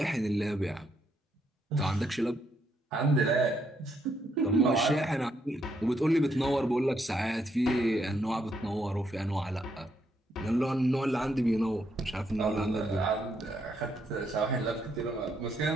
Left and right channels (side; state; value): both; normal; correlation 0.75